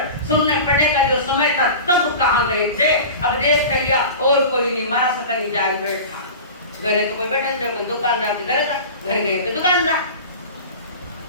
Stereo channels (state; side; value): inverted; both; correlation -0.34